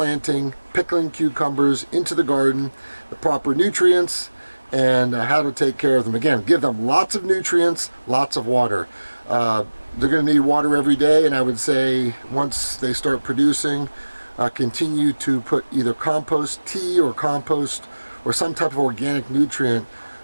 pickling cucumbers into the garden, the proper nutrients, and how to take care of them. Again, give them lots of nutrients, lots of water. They're going to need water every day, and I would say once they start producing, continue to put either compost tea or compost or some type of organic nutrient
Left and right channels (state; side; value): inverted; both; correlation -1.00